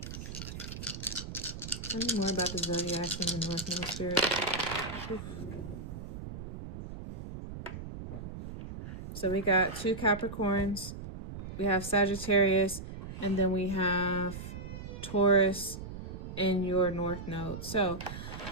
Tell me more about the zodiacs and the North Node spirit. Oof. So we got 2 Capricorns, we have Sagittarius, and then we have Taurus in your North Node. So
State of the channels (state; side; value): noise; right; rumble, 9 dB below the sound